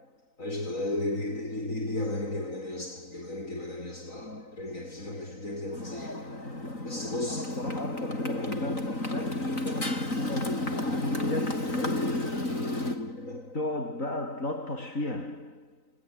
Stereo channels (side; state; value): right; late; 3.9 ms